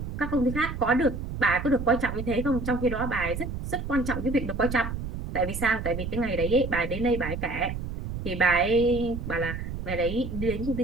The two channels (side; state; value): right; noise; rumble, 6 dB below the sound